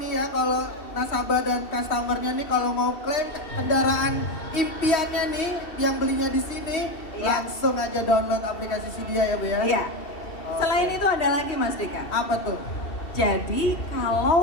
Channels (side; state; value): right; late; 3.1 ms